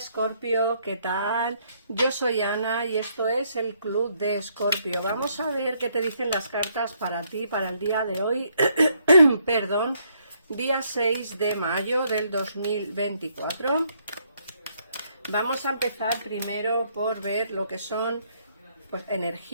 ¿qué tal? Yo soy Ana y esto es el Club de Escorpio. Vamos a ver qué te dicen las cartas para ti, para el día de hoy, perdón, día 6 de mayo del 2024. Vamos a empezar primero por ver lo que son pues,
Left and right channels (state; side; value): inverted; both; correlation -0.71